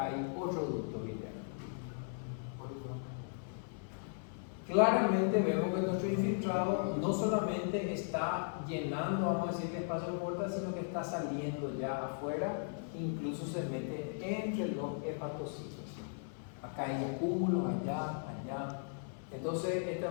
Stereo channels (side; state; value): right; silent; 53 dB below the other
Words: hay otro ducto biliar. Claramente vemos que nuestro infiltrado no solamente está llenando, vamos a decir, el espacio de porta, sino que está saliendo ya afuera, incluso se mete entre los hepatocitos. Acá hay acúmulos, allá. Entonces,